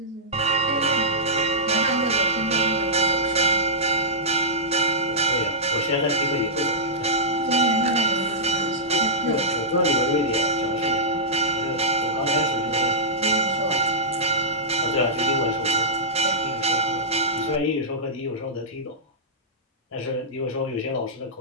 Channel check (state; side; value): normal; both; correlation -0.12